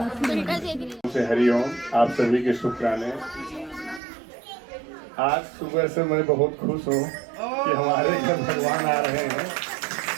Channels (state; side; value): drops out; left; at 4.0 s